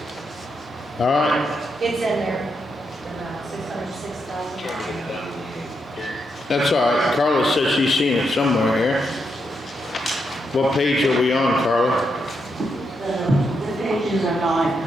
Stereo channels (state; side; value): normal; both; correlation 0.82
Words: All right. It's in there, about $606,000. That's all right. Carla says she's seen it somewhere here. What page are we on, Carla? The pages are not